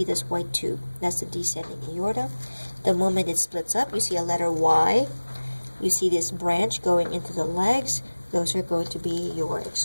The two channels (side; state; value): both; inverted; correlation -1.00